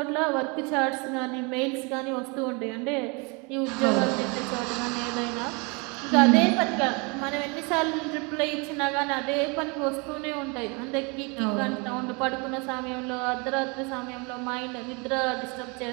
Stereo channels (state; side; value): quieter; left; 30.5 dB